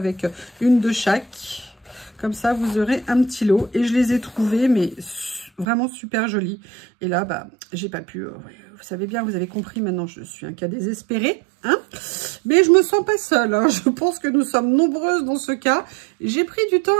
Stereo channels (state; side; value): drops out; left; at 5.7 s